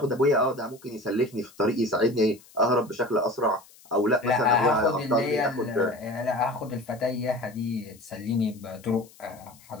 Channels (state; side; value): noise; left; hiss, 25 dB below the sound